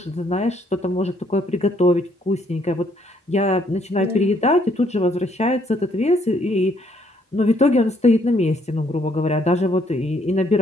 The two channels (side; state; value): both; normal; correlation 0.68